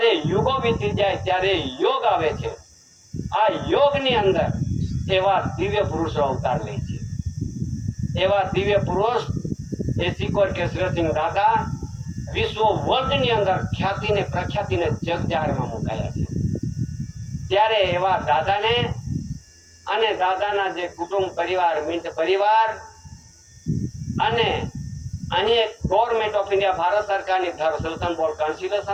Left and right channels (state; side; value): identical; both; correlation 1.00